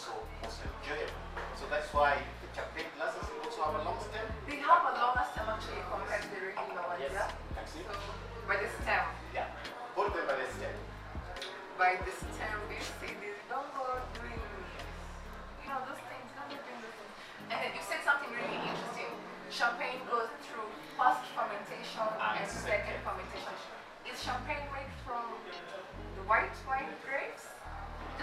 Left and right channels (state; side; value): identical; both; correlation 1.00